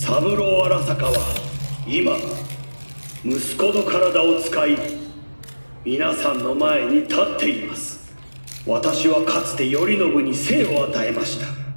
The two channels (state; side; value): inverted; both; correlation -1.00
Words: 郎荒坂は今、息子の体を使い、皆さんの前に立っています。私はかつて頼信に生を与えました。